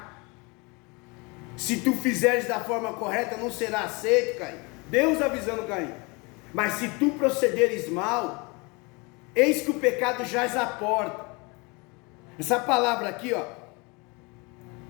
Se tu fizeres da forma correta, não será aceito, Caim. Deus avisando Caim: mas se tu procederes mal, eis que o pecado jaz à porta. Essa palavra aqui, ó,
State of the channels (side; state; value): right; quieter; 28.3 dB